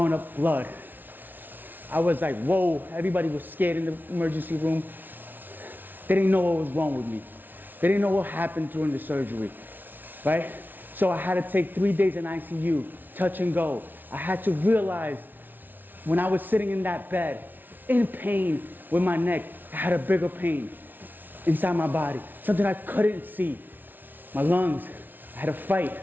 up blood. I was like, whoa, everybody was scared in the emergency room. They didn't know what was wrong with me. They didn't know what happened during the surgery, right? So I had to take 3 days in ICU, touch and go. I had to realize when I was sitting in that bed, in pain with my neck, I had a bigger pain inside my body, something I couldn't see. My lungs, I had to fight,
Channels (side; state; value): left; late; 0.088 ms